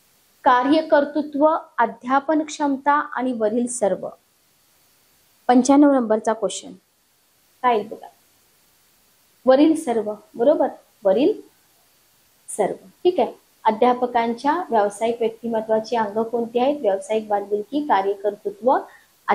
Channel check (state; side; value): identical; both; correlation 1.00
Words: कार्यकर्तृत्व, अध्यापन क्षमता आणि वरील सर्व. 95 नंबरचा क्वेश्चन काय येईल बघा. वरील सर्व. बरोबर. वरील सर्व. ठीक आहे. अध्यापकांच्या व्यावसायिक व्यक्तिमत्वाची अंग कोणती आहेत? व्यावसायिक बांधिलकी, कार्यकर्तृत्व,